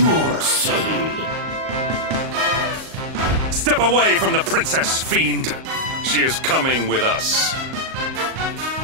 see. Step away from the princess, fiend. She is coming with us.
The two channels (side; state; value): left; late; 38 ms